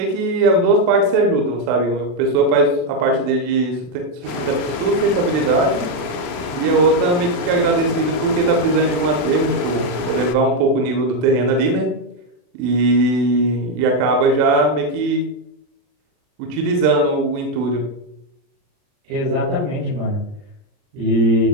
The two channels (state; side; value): late; left; 40 ms